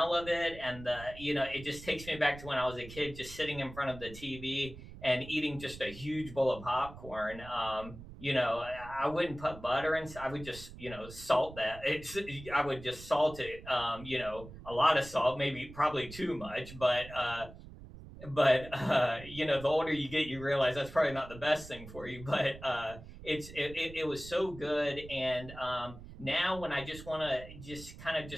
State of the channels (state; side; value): noise; right; rumble, 15 dB below the sound